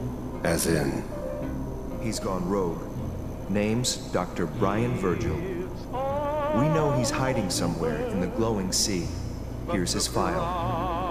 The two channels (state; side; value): identical; both; correlation 1.00